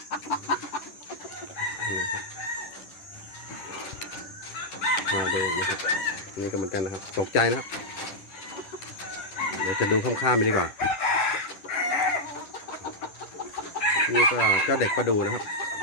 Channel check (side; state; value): right; late; 10 ms